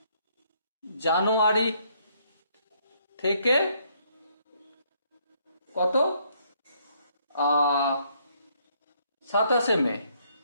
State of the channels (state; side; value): inverted; both; correlation -0.69